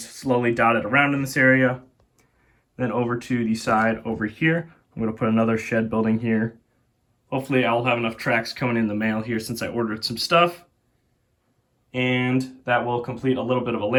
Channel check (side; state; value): both; identical; correlation 1.00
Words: slowly dotted around in this area. Then over to the side over here, I'm going to put another shed building here. Hopefully I'll have enough tracks coming in the mail here since I ordered some stuff. And that will complete a little bit of a